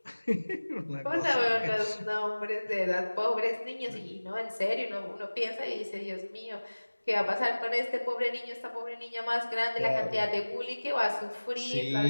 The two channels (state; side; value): inverted; both; correlation -1.00